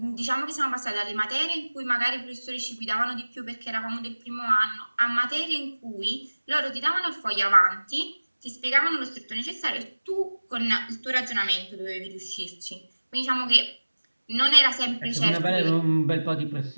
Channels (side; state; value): both; inverted; correlation -1.00